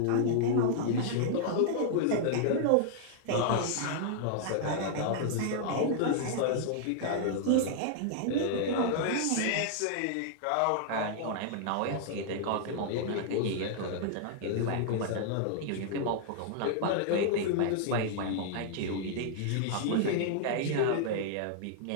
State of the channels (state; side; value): different; both; correlation -0.01